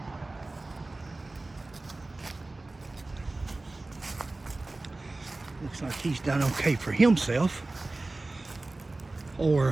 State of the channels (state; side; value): quieter; left; 3.0 dB